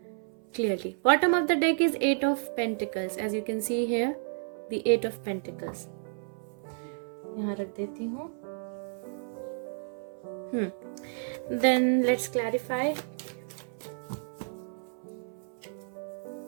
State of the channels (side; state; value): left; silent; 57 dB below the other